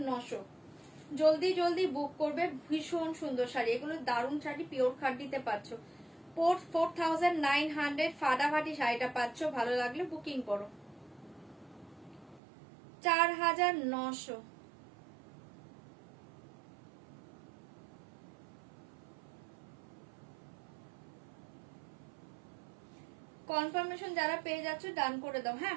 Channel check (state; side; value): drops out; left; at 12.4 s